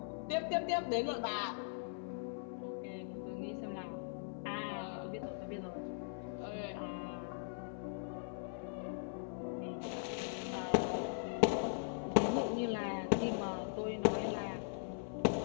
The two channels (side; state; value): right; silent; 51 dB below the other